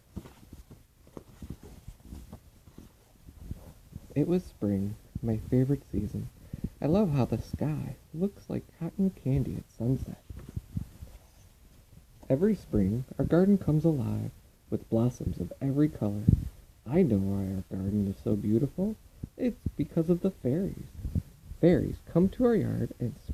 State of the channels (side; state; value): both; identical; correlation 1.00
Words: It was spring, my favorite season. I love how the sky looks like cotton candy at sunset. Every spring, our garden comes alive with blossoms of every color. I know why our garden is so beautiful. It's because of the fairies. Fairies come to our yard and